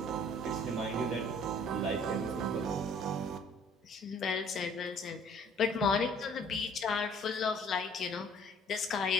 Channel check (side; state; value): both; normal; correlation 0.55